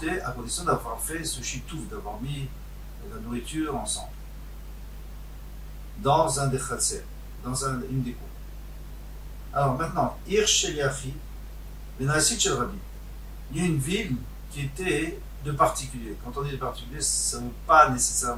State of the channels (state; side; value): identical; both; correlation 1.00